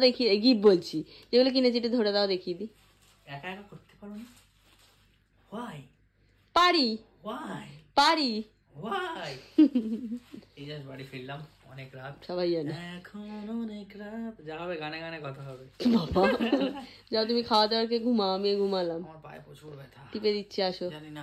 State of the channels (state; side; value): identical; both; correlation 1.00